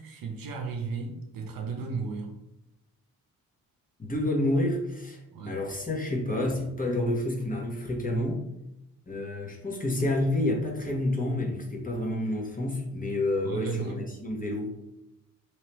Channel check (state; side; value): normal; both; correlation 0.58